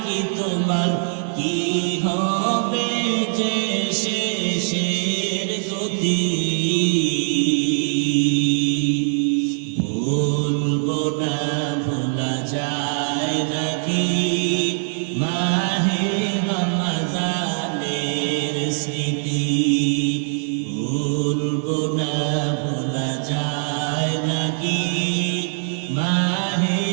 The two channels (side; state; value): left; silent; 59 dB below the other